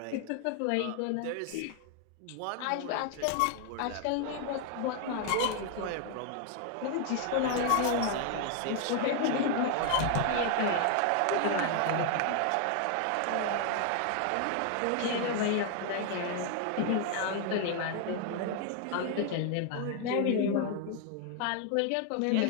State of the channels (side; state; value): both; different; correlation 0.00